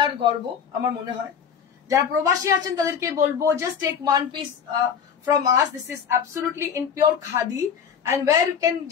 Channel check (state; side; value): quieter; right; 7.4 dB